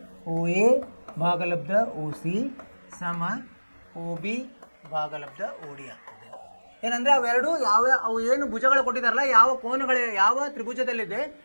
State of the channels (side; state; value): both; inverted; correlation -1.00